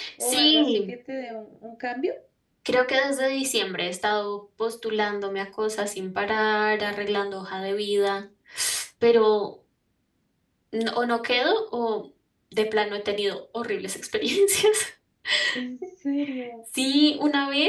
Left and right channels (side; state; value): both; identical; correlation 1.00